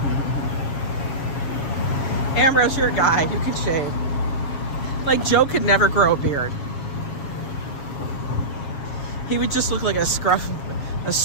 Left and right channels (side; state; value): right; late; 7.2 ms